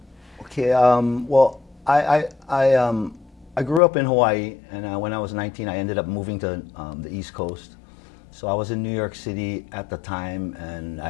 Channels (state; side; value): drops out; right; at 3.8 s